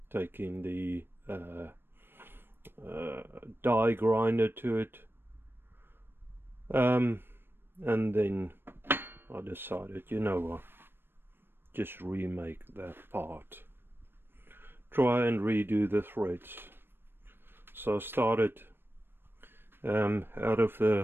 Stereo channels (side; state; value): left; late; 0.10 ms